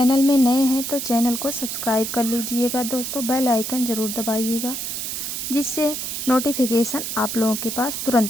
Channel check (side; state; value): right; noise; hiss, 4 dB below the sound